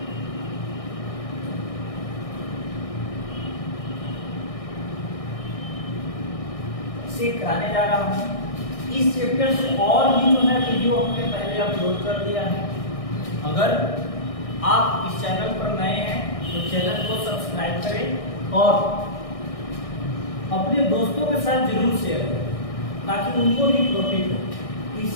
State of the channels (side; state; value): right; late; 1.6 ms